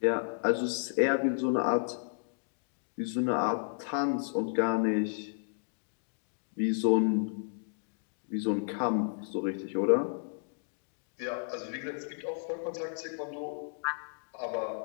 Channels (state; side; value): silent; right; digital silence